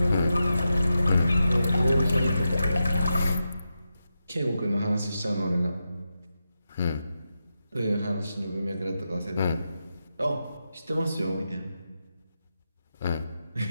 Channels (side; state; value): both; inverted; correlation -0.89